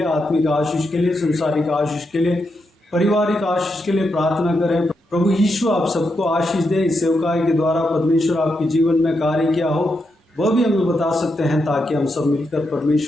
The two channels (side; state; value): both; normal; correlation 0.83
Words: आत्मिक आशीष के लिए, संसारिक आशीष के लिए, पारिवारिक आशीष के लिए प्रार्थना करें। प्रभु यीशु आप सबको आशीष दे। इस सेवकाई के द्वारा परमेश्वर आपके जीवन में कार्य किया हो वह भी हमें बता सकते हैं, ताकि हम सब मिलकर